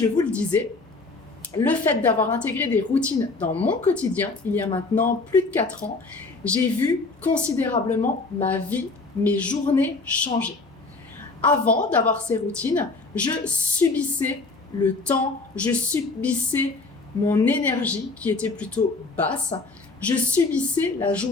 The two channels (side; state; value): right; quieter; 3.7 dB